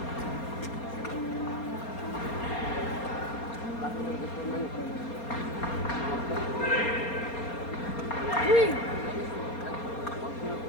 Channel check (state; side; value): late; right; 4.3 ms